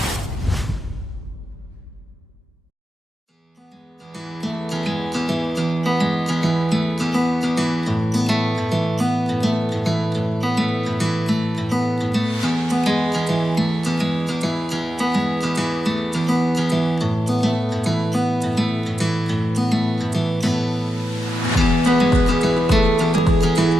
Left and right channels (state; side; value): normal; both; correlation 0.90